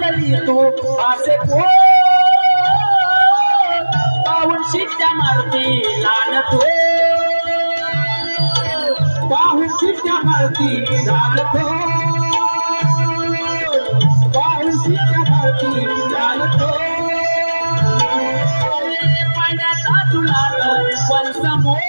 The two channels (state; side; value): inverted; both; correlation -1.00